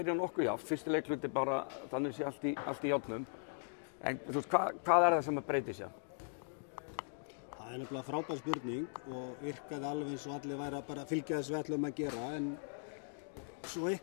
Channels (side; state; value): right; silent; digital silence